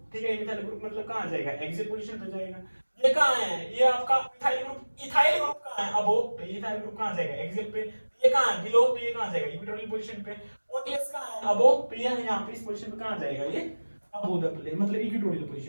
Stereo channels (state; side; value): inverted; both; correlation -1.00